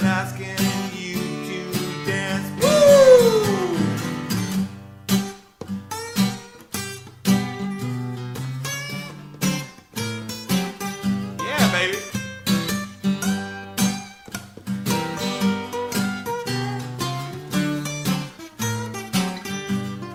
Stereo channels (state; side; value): identical; both; correlation 1.00